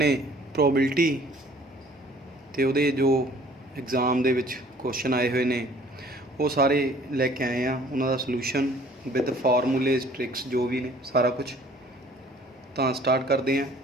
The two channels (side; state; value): both; normal; correlation 0.54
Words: प्रोबेबिलिटी तो वो जो एग्जाम के क्वेश्चन आए हुए ने वो सारे लैके आए हैं। उन्होंने सलूशन विद फार्मूलेज ट्रिक्स जो भी ने सारा कुछ तो स्टार्ट करते हैं।